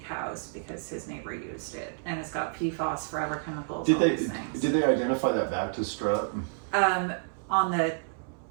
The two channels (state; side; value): silent; left; 58 dB below the other